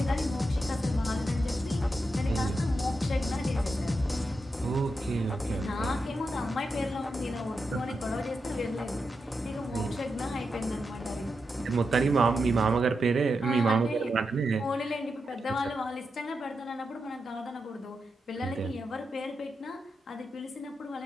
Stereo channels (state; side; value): normal; both; correlation 0.87